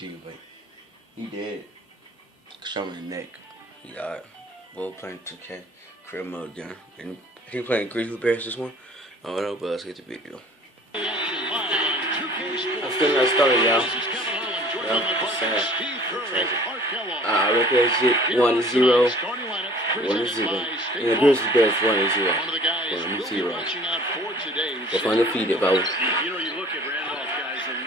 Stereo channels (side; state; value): both; normal; correlation 0.50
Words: but he dead. Shot him in the neck. He died. Both playing 2K, career mode again. And I think playing Grizzly Bears this one. I don't know, but let's get the video. I'm still not started, y'all. It's sad. I reckon that shit 1-0. 1-0. And the Grizzly Bears 1-0. 1-0. They're undefeated, bro. You know, you look at Randolph, guys, and